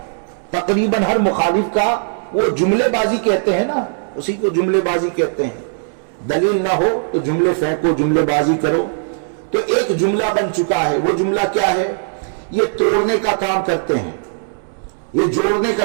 تقریباً ہر مخالف کا، وہ جملے بازی کہتے ہیں نا، اسی کو جملے بازی کہتے ہیں. دلیل نہ ہو تو جملے پھینکو، جملے بازی کرو. تو ایک جملہ بن چکا ہے. وہ جملہ کیا ہے؟ یہ توڑنے کا کام کرتے ہیں. یہ جوڑنے کا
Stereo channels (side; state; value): left; silent; 67 dB below the other